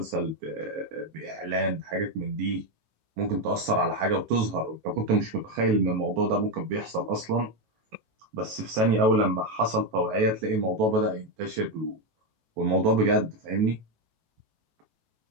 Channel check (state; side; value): late; left; 18 ms